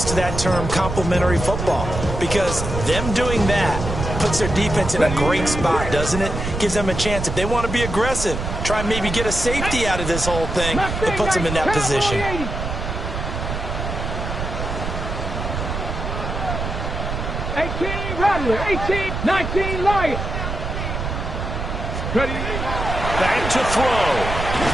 to that term complementary football, because them doing that puts their defense in a great spot, doesn't it? Gives them a chance. If they want to be aggressive, try and maybe get a safety out of this whole thing, it puts them in that position. 18 Rattler, 18, 19 Lion. Back to throw.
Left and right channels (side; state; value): right; noise; rumble, 4 dB below the sound